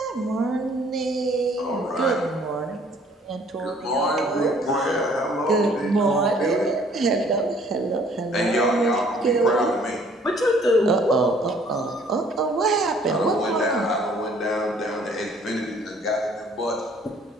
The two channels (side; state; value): both; normal; correlation 0.58